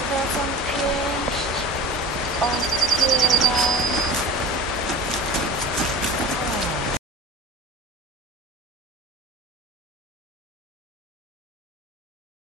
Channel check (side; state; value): both; normal; correlation 0.37